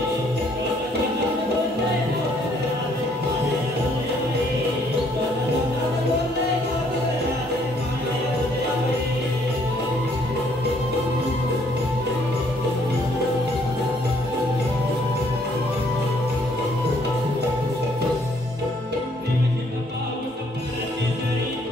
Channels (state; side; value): normal; both; correlation 0.65